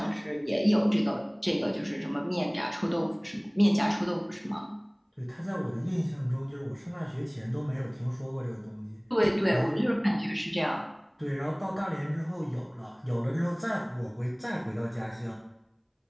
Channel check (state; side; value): identical; both; correlation 1.00